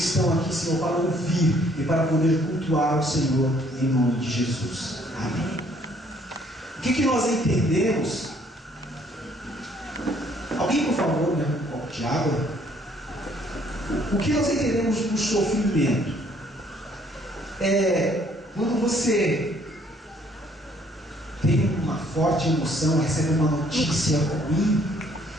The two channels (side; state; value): both; normal; correlation 0.63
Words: estão aqui, Senhor, para ouvir e para poder cultuar o Senhor em nome de Jesus. Amém. O que nós entendemos? Alguém, por favor, me dá um copo de água? O que nós entendemos do sofrimento? Quando você tem uma forte emoção, recebe uma notícia ruim,